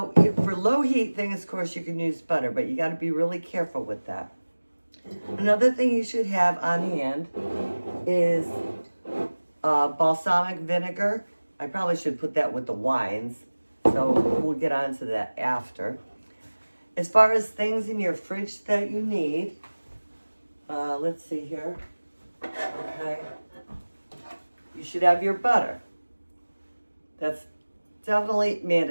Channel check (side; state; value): both; inverted; correlation -1.00